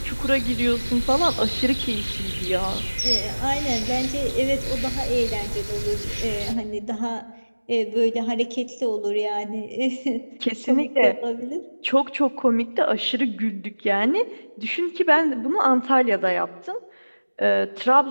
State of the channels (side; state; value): both; inverted; correlation -1.00